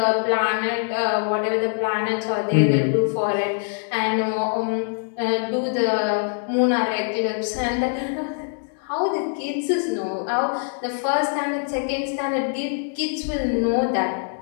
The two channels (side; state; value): right; silent; 63 dB below the other